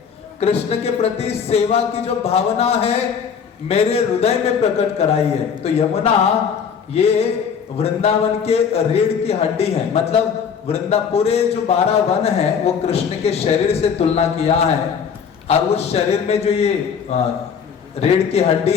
कृष्ण के प्रति सेवा की जो भावना है मेरे हृदय में प्रकट कराइए। तो यमुना ये वृंदावन के रीढ़ की हड्डी है, मतलब पूरे जो 12 वन है वो कृष्ण के शरीर से तुलना किया है और उस शरीर में जो ये रीढ़ की हड्डी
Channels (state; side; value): quieter; right; 6.9 dB